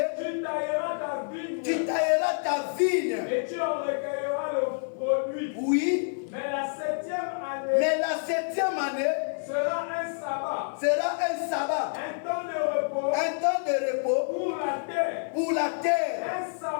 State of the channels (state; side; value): silent; right; digital silence